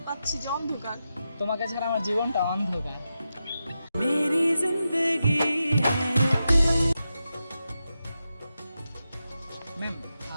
পাচ্ছি যে অন্ধকার। তোমাকে ছাড়া আমার জীবনটা অন্ধকার। मेरी जिंदगी है। ম্যাম,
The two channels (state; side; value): inverted; both; correlation -0.89